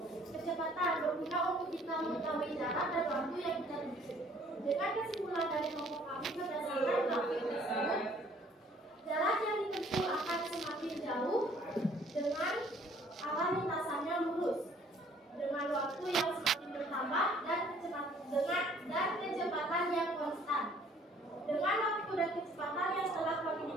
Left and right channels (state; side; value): normal; both; correlation 0.58